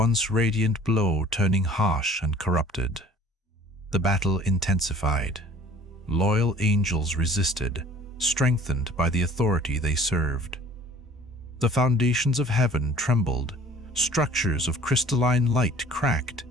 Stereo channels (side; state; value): both; normal; correlation 0.50